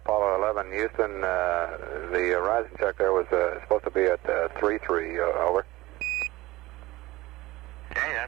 11, Houston, the horizon check there was supposed to be at 33, over. Okay, that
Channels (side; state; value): left; quieter; 19.0 dB